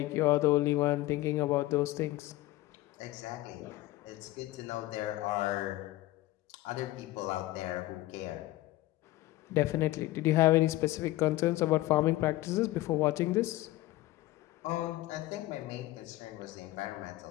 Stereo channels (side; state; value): right; quieter; 17.4 dB